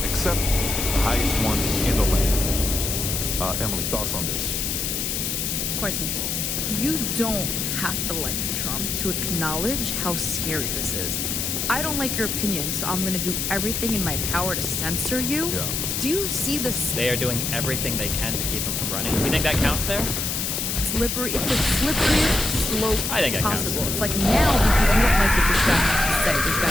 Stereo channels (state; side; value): noise; left; hiss, 1 dB below the sound